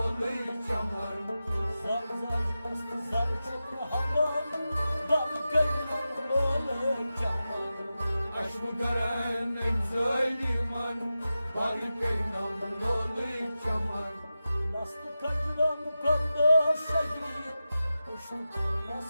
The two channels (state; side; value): inverted; both; correlation -0.93